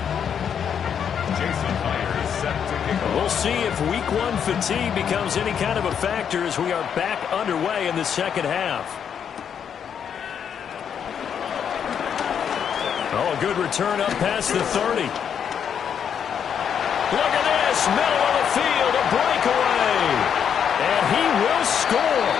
We'll see if week 1 fatigue becomes any kind of a factor as we are back underway in the second half. Oh, a good return up past the 30. Look at this, middle of the field, a breakaway. And he will score.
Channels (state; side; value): quieter; right; 8.0 dB